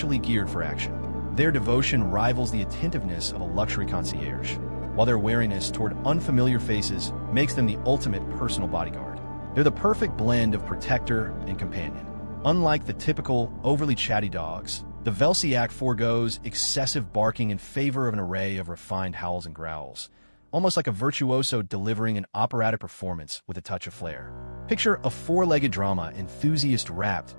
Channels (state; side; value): inverted; both; correlation -1.00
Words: geared for action. Their devotion rivals the attentiveness of a luxury concierge, while their wariness toward unfamiliar faces makes them the ultimate personal bodyguard. They're the perfect blend of protector and companion. Unlike the typical, overly chatty dogs, the Velsiak forgoes excessive barking in favor of an array of refined howls and growls, almost like a virtuoso delivering an operatic performance with a touch of flair. Picture a four-legged drama enthusiast wrapped